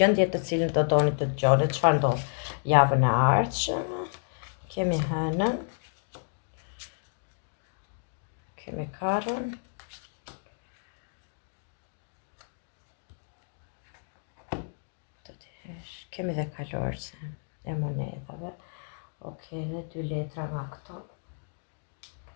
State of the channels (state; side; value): silent; right; digital silence